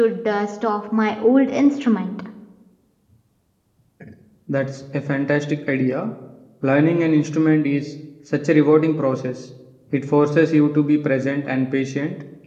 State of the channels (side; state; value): both; identical; correlation 1.00